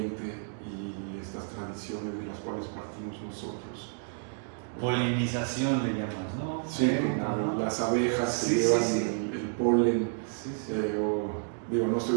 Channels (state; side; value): silent; left; 58 dB below the other